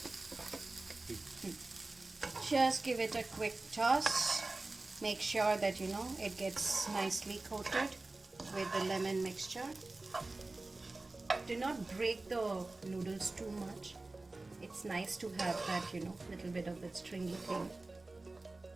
Just give it a quick toss. Make sure that it gets nicely coated with the lemon mixture. Do not break the noodles too much. It's nice to have that, little bit of that stringy thing.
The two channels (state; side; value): quieter; left; 3.2 dB